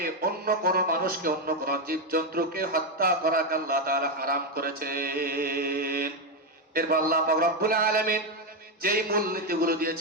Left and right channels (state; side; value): normal; both; correlation 0.06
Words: অন্য কোন মানুষকে, অন্য কোন জীবজন্তুকে হত্যা করাকে আল্লাহ তাআলা হারাম করেছেন। এরপর আল্লাহ পাক রব্বুল আলামিন যেই মূলনীতিগুলো